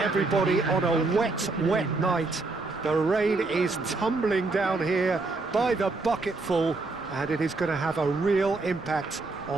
on a wet, wet night. The rain is tumbling down here by the bucketful, and it is going to have a real impact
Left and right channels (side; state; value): left; quieter; 3.5 dB